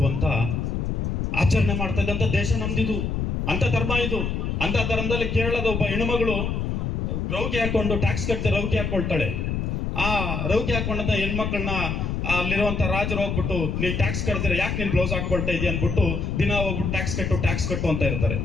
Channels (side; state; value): left; noise; rumble, 1 dB below the sound